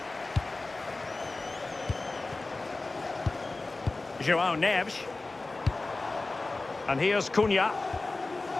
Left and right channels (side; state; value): right; quieter; 3.3 dB